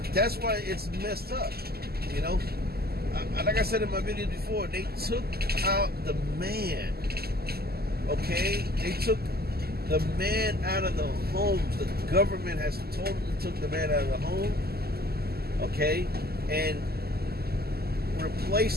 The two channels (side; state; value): left; late; 0.46 ms